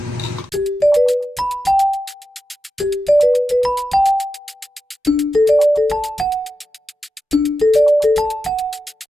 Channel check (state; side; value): normal; both; correlation 0.90